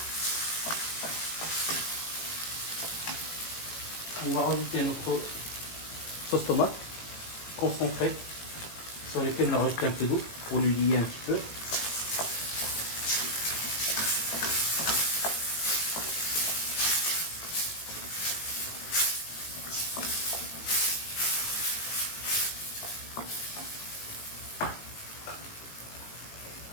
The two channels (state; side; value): late; right; 18 ms